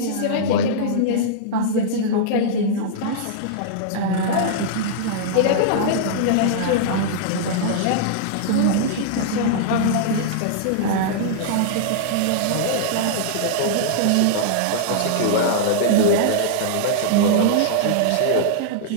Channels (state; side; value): different; both; correlation -0.02